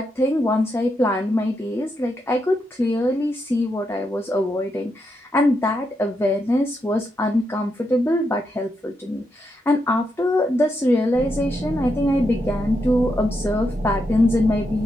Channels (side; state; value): both; normal; correlation 0.83